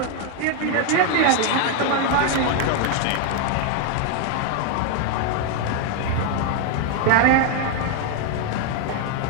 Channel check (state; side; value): different; both; correlation 0.01